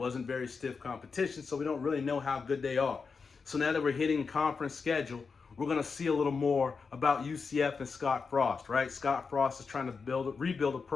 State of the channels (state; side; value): quieter; right; 5.1 dB